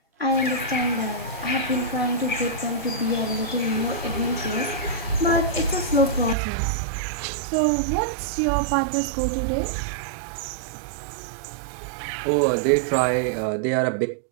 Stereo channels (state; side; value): drops out; left; at 6.4 s